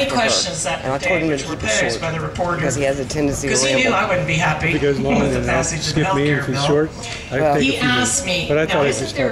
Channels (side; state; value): both; identical; correlation 1.00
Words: after questions her. that And I told him to were keep it posed short by the reporter because he has a tendency to because he knew ramble. I wouldn't be happy If it goes long, with the then I'll passage of the skip health me. care If it's bill. short, I take a He few asked minutes. me, But I now thought I'd isn't just there